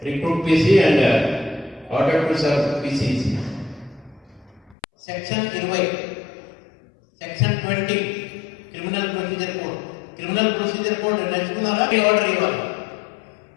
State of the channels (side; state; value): right; drops out; at 4.8 s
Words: recruit PC and order to serve PCs. Section 20, Section 20 Criminal Procedure Code. Criminal Procedure Code నడుచుకున్నారా? ఆర్డర్ ఇవ్వాలి.